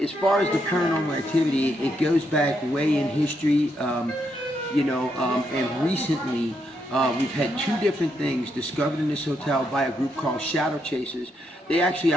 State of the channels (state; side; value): normal; both; correlation 0.79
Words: far as the paranormal activity, it goes back way in history, and recently we've had two different things discovered in this hotel by a group called Shadow Chasers. They actually